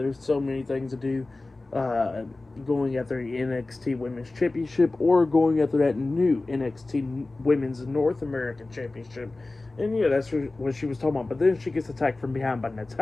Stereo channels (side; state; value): right; quieter; 3.2 dB